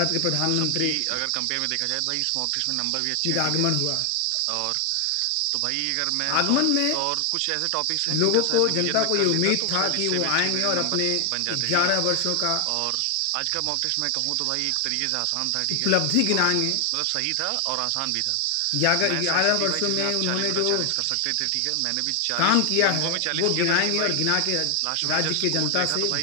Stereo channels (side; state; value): both; different; correlation 0.00